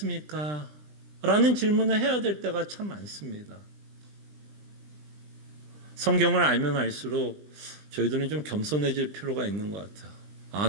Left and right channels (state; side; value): late; left; 20 ms